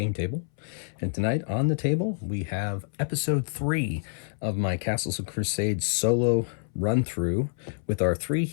Table. And tonight on the table we have episode 3 of my Castles and Crusades solo run-through with our 3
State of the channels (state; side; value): silent; right; 60 dB below the other